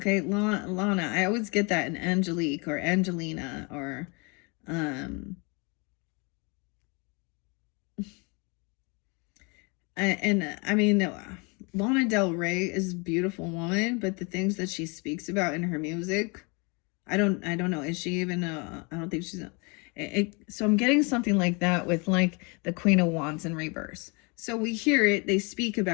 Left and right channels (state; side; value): quieter; right; 31.0 dB